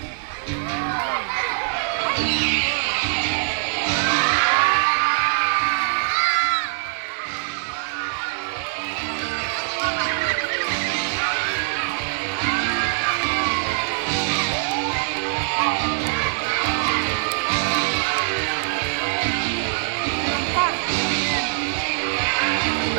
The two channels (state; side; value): silent; left; 58 dB below the other